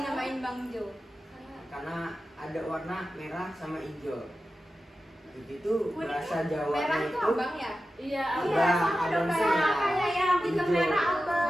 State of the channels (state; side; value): normal; both; correlation 0.93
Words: Bang Jo? Karena ada warna merah sama hijau. Itu bahasa Jawa Merah itu itu abang ya? Iya, Iya, Abang, sama abang dong semua. kayak yang hitam hijau. merah